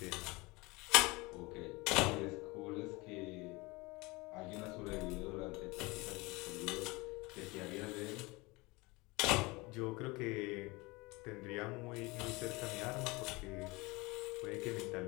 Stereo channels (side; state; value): right; quieter; 24.0 dB